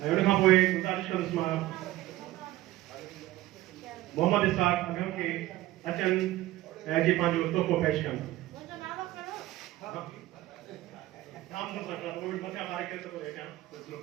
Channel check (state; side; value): quieter; left; 16.3 dB